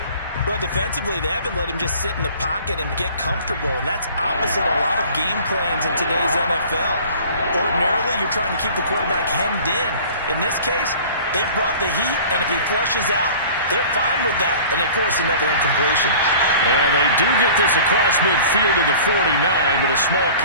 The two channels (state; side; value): inverted; both; correlation -0.45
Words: Well, defensively, they haven't let him just sit in the pocket and get comfortable, and that's opposite a lot of game plans in today's NFL. Ordinarily, you're trying to keep the quarterback hemmed in. In this case, they've brought the heat, and if he flushes out, they're fine with that, and they force another incompletion. And they do get this across midfield to the 49, but a small